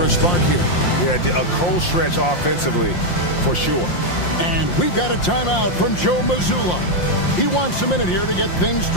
a spark here. Yeah, a cold stretch offensively for sure. And we've got a timeout from Joe Mazzulla. He wants a minute here to get things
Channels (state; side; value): late; right; 5.7 ms